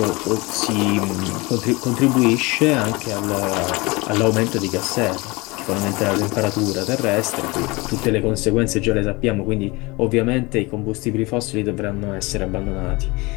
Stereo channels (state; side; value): quieter; right; 24.5 dB